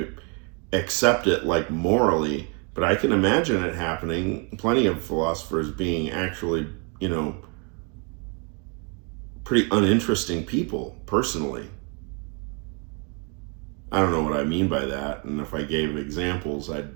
accept it morally, but I can imagine it happening. Plenty of philosophers being actually, pretty uninteresting people, personally. I don't know what I mean by that, and if I gave examples, I'd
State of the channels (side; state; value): left; quieter; 34.9 dB